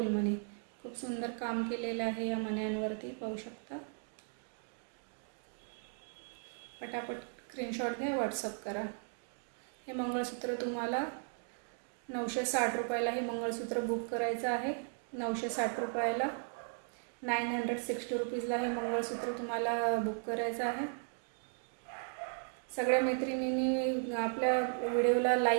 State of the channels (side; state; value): left; silent; 53 dB below the other